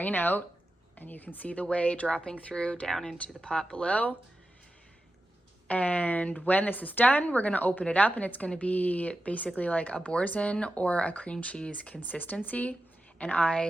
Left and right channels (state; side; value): normal; both; correlation 0.91